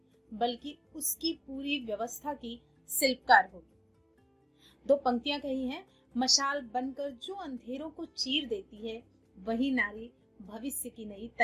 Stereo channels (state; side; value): identical; both; correlation 1.00